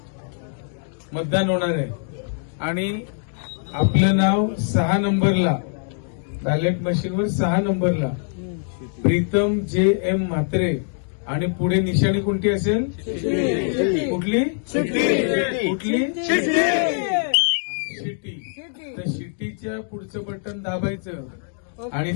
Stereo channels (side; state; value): right; silent; digital silence